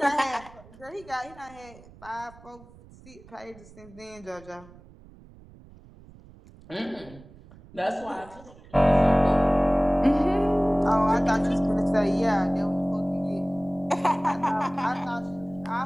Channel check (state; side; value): noise; right; rumble, 22 dB below the sound